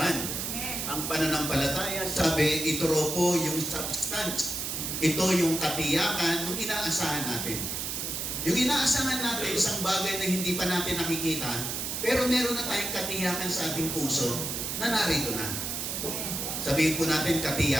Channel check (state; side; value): noise; right; hiss, 3 dB below the sound